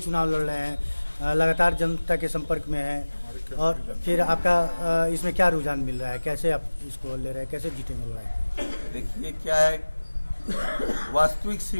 लड़ रहे हैं, लगातार जनता के संपर्क में हैं, और फिर आपका इसमें क्या रुझान मिल रहा है, कैसे आप इसको ले रहे हैं, कैसे जीतेंगे लड़ाई? देखिए क्या है, वास्तविक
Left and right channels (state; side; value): inverted; both; correlation -1.00